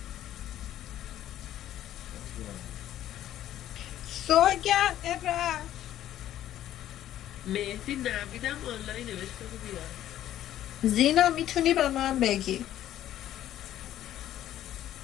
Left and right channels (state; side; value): quieter; right; 12.3 dB